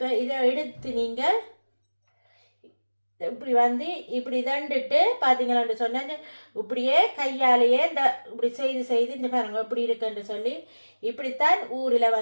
இதை எடுத்து நீங்கள் இப்படி வந்து இப்படி தண்டுட்டு பார்த்தீங்களான்னு சொன்னாங்க. இப்படியே கையாலேயே இந்த இப்படி செய்து இந்த பாருங்க இப்படி இருக்குன்னு சொல்லி இப்படித்தான் ஊரில்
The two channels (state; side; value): inverted; both; correlation -1.00